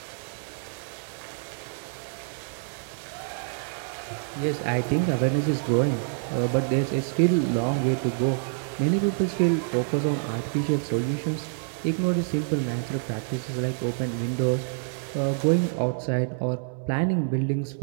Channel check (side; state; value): left; silent; 59 dB below the other